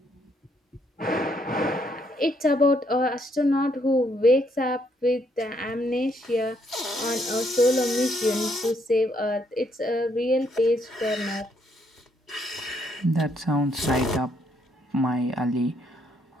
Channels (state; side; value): normal; both; correlation 0.72